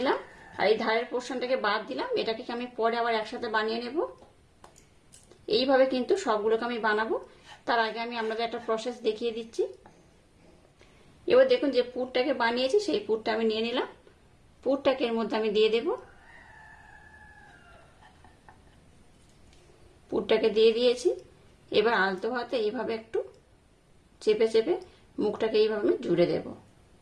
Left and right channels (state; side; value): identical; both; correlation 1.00